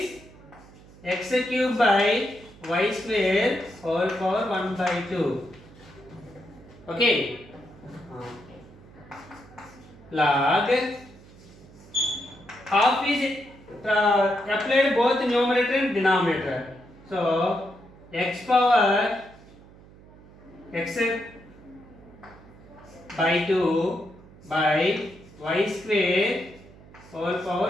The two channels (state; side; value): noise; right; hum, 22 dB below the sound